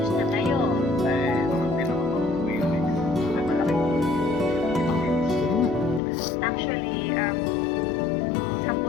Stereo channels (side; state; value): right; drops out; at 6.0 s